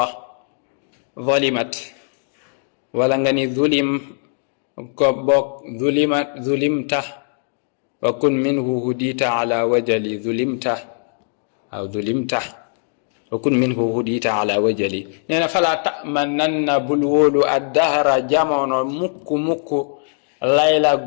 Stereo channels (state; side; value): silent; right; digital silence